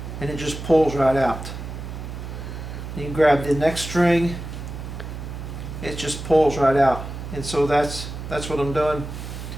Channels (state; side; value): noise; right; hum, 9 dB below the sound